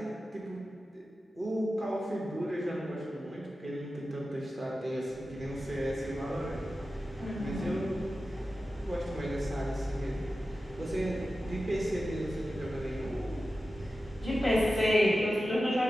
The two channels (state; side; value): normal; both; correlation 0.93